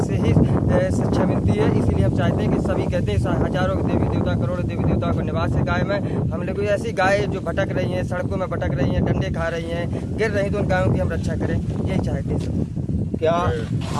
से ही शिक्षा मिलती है, इसलिए हम चाहते हैं कि सभी कहते हैं हजारों देवी देवता, करोड़ों देवी देवताओं का निवास है गाय में। हम लोग ऐसी गाय जो भटक रही हैं, सड़कों में भटक रही हैं, डंडे खा रही हैं, गिर रही, तो उन गायों की हम रक्षा करें, यही चाहते हैं। क्या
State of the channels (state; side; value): identical; both; correlation 1.00